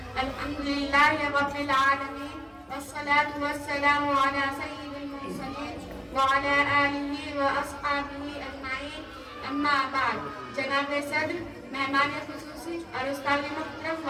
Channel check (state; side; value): identical; both; correlation 1.00